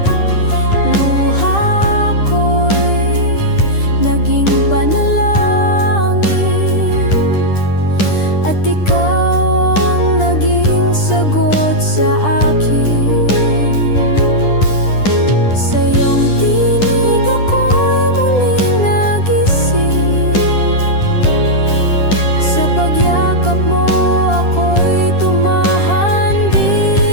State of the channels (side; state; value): right; late; 10 ms